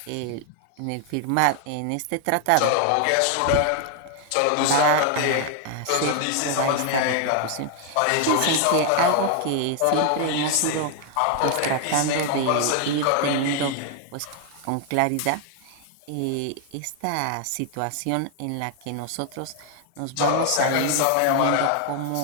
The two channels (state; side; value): different; both; correlation 0.00